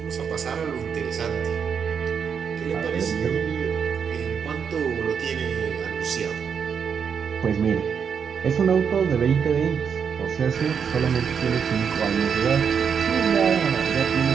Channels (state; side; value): quieter; left; 6.9 dB